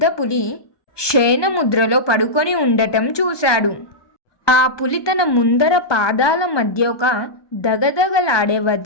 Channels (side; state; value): right; late; 1.2 ms